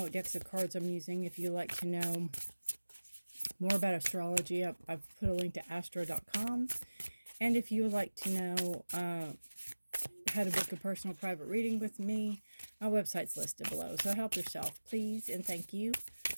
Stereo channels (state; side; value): inverted; both; correlation -1.00